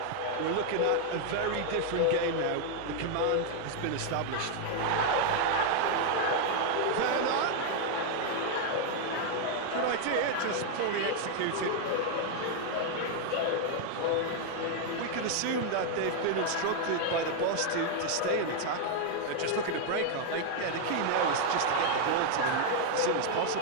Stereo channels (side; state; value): both; different; correlation 0.00